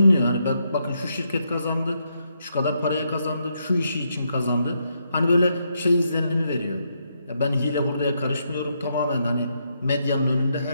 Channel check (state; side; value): inverted; both; correlation -0.79